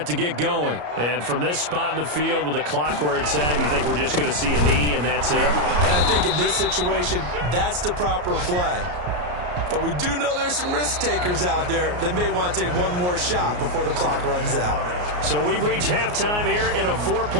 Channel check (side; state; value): left; late; 34 ms